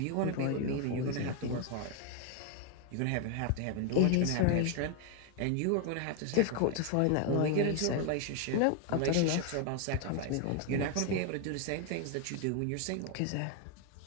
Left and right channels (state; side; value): different; both; correlation 0.00